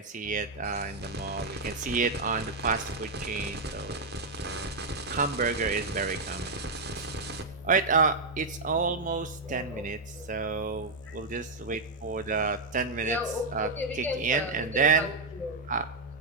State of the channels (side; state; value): left; quieter; 3.3 dB